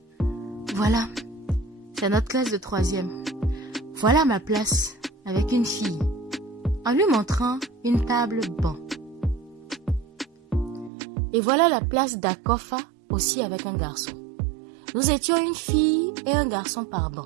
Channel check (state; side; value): drops out; left; at 10.9 s